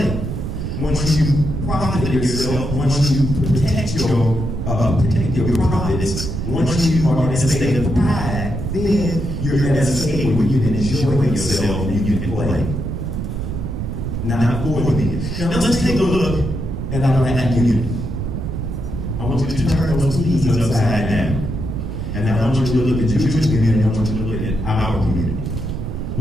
Once you profit yourself, once you protect your profits, once you are in a state of pride, then you're in a state where you can enjoy yourself and you can play. Not for me. Now let's take a look at our community. I want you to turn those keys upside down. And I want you to look at the Jewish community, and I want you to look at our community.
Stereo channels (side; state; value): right; noise; rumble, 4 dB below the sound